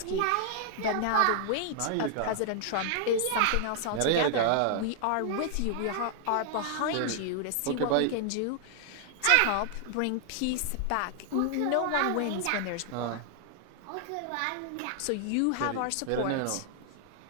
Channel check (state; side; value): different; both; correlation 0.00